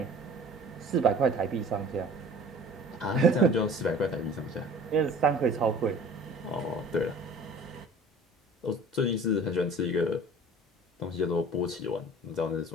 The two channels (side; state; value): both; normal; correlation 0.45